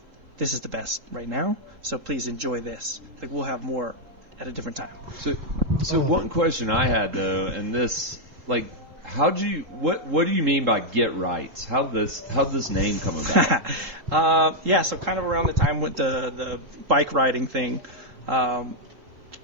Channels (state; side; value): late; left; 3.7 ms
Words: this is the best right now. So please enjoy this. Like, we'll have more at a different time. So one question I had though, and this, like, what do you mean by get right? How'd this name come about? So kind of around the time with the bike riding thing,